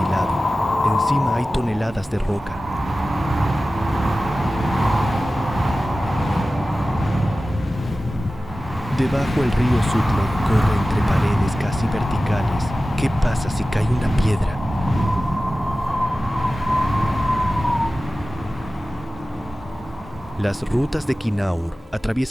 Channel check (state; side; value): normal; both; correlation 0.96